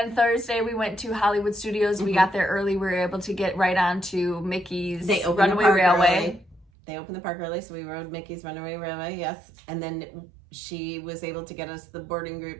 Thursday we went to Hollywood Studios. We got there early. We were able to get right on to Mickey's Runaway Railway. They opened the park early, so we rode Mickey's Runaway Railway, yes. And then she was able to get us the boarding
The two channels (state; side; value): drops out; left; at 6.7 s